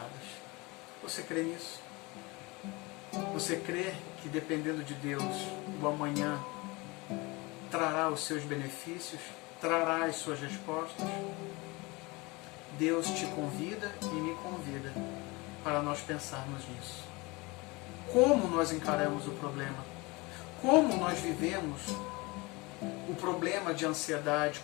Você crê nisso? Você crê que dependendo de Deus, o amanhã trará os seus benefícios, trará as suas respostas? Deus te convida e me convida para nós pensarmos nisso. Como nós encaramos o problema? Como nós vivemos o problema de ansiedade?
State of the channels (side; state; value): right; quieter; 24.8 dB